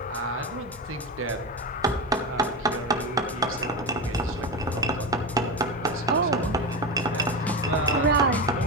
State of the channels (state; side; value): normal; both; correlation 0.19